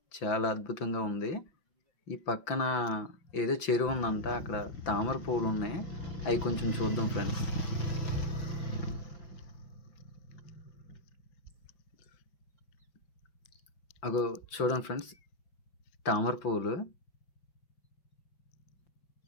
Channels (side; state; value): right; late; 5.9 ms